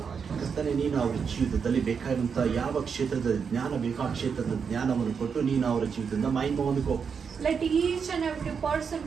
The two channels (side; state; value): left; quieter; 6.3 dB